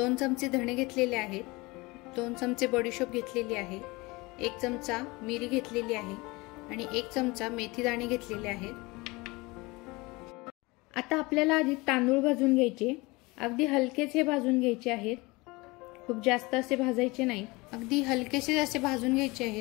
चमचे धणे घेतलेले आहेत, 2 चमचे बडीशोप घेतलेली आहे, 1 चमचा मिरी घेतलेली आहे आणि 1 चमचा मेथी दाणे घेतलेले आहेत। आता आपल्याला आधी तांदूळ भाजून घ्यायचे, अगदी हलकेसे भाजून घ्यायचे आहेत, खूप जास्त असे भाजायचे नाही, अगदी हलकेसे असे भाजून घ्यायचे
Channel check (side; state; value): right; quieter; 23.8 dB